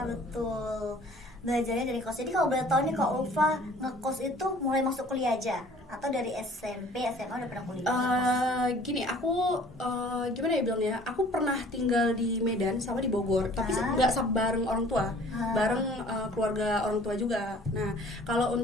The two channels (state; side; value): normal; both; correlation 0.51